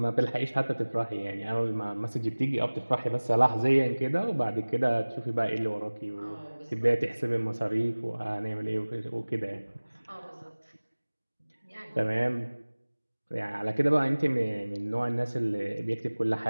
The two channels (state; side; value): inverted; both; correlation -1.00